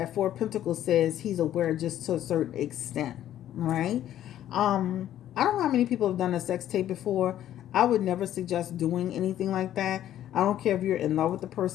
Four of Pentacles says he's aware just to a certain extent. Right? I don't know how many people have done a sex tape before. I would never suggest doing anything like that. I don't care if you're in love with the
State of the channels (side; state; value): right; quieter; 11.9 dB